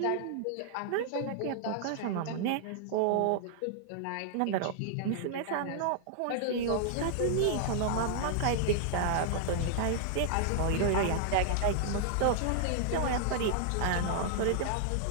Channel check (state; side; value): different; both; correlation -0.01